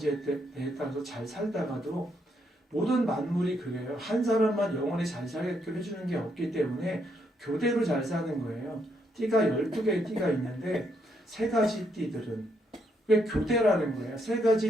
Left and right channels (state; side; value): normal; both; correlation 0.75